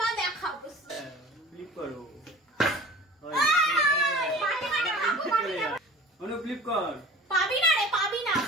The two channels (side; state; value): both; normal; correlation 0.41